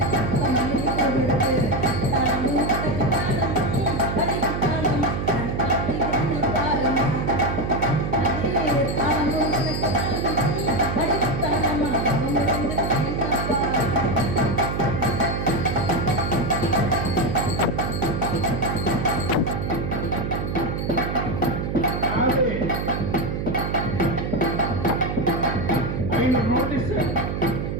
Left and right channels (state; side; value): noise; right; hum, 3 dB below the sound